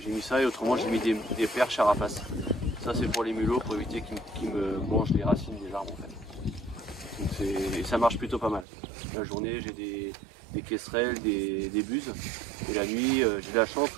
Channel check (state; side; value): drops out; left; at 8.7 s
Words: J'ai mis ça et autrement j'ai mis des perches à rapace. Ça c'est pour les mulots, pour éviter qu'ils me mangent les racines des arbres en fait. Donc et ça marche plutôt pas mal. La journée j'ai des quesserelles, des buses. Et la nuit j'ai de la chance